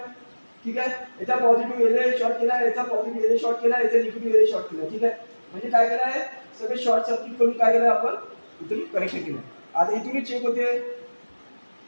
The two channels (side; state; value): both; inverted; correlation -1.00